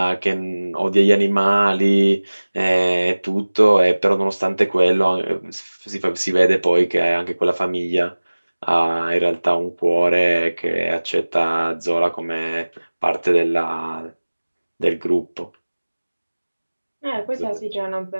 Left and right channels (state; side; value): inverted; both; correlation -1.00